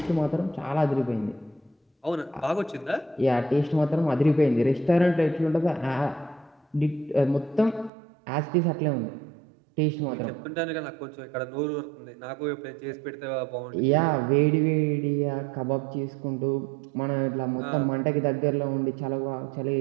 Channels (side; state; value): left; drops out; at 7.9 s